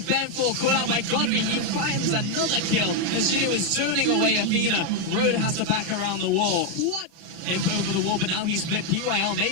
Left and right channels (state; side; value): late; left; 31 ms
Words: Banfor caught out by Godfrey. He finds another kill as Jinnu is zoning away Athena. Road has to back around the wall. What? Imp over the wall, but now he's split. PYL